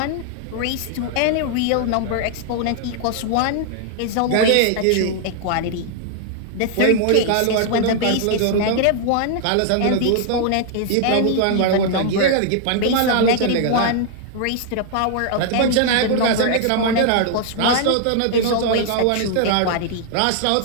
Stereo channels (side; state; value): both; different; correlation -0.01